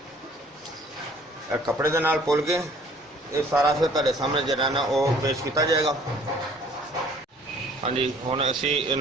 कपड़े के नाल पुल के ये सारा फिर तुहाडे सामने जिहड़ा ना वो पेश किया जाएगा। हाँ जी, हुण असीं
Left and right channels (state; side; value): normal; both; correlation 0.55